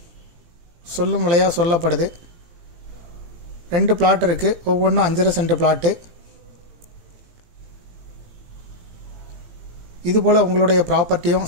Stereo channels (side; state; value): left; late; 18 ms